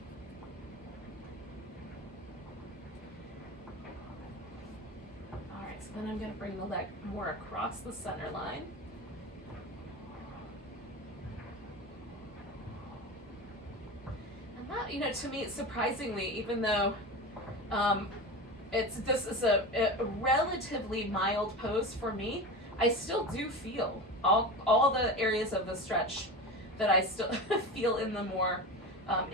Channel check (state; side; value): normal; both; correlation 0.27